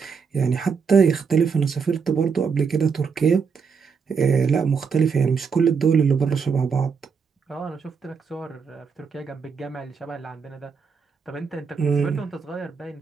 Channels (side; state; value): left; quieter; 5.8 dB